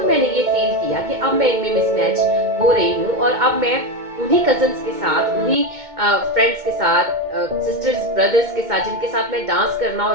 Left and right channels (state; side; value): late; left; 2.2 ms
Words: मैंने ये फील किया कि अब मैं इनमें मिसमैच हो रही हूँ, और अब मैं उन्हीं कजन्स के साथ, उन्हीं फ्रेंड्स के साथ, सिस्टर्स ब्रदर्स के साथ, जिनके साथ मैं डांस करना और